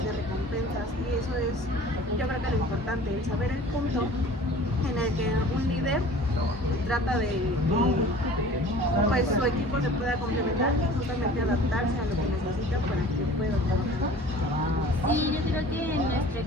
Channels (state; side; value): normal; both; correlation 0.44